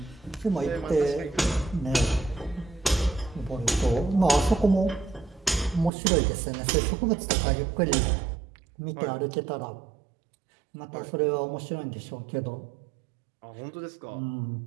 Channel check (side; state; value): left; drops out; at 5.9 s